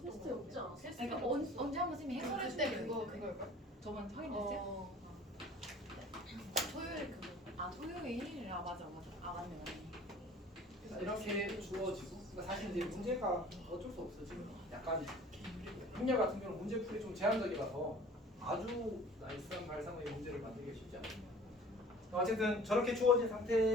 테스트 거 없지 않았어? 그러니까 언제 한번 쌤이 해설해 그때 주는 그걸걸? 저번 확인했어요? 토요일 그거. 토요일. 맞아. 맞네. 이렇게 주어지고 그러니까 사실 이제 문제가 어쩔 수 없어 지금 약간 행렬 같은 경우는 문제풀이 좀 제한적이라서 아주 나이스한 발상의 문제를 만들기가 쉽지 않습니다. 어쨌든 저렇게 주어진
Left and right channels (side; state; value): both; normal; correlation 0.47